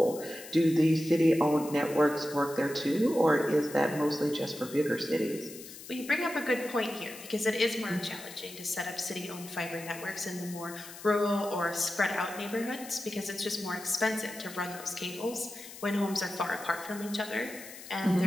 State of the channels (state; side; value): noise; left; hiss, 15 dB below the sound